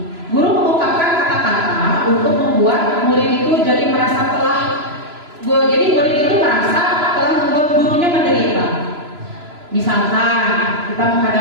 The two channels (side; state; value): left; late; 3.0 ms